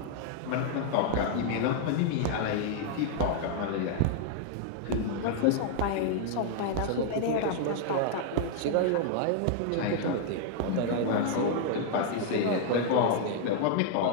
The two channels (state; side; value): different; both; correlation -0.01